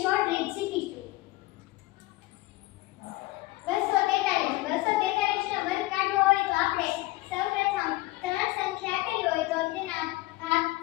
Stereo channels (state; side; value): quieter; right; 19.4 dB